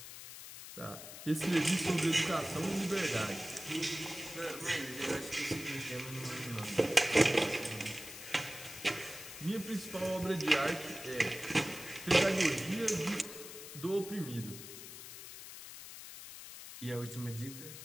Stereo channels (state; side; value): noise; left; hiss, 12 dB below the sound